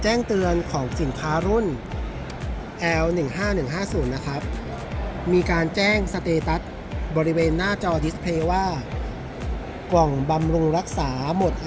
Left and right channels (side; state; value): both; identical; correlation 1.00